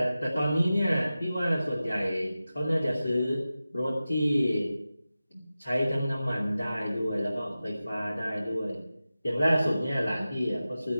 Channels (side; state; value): both; inverted; correlation -0.94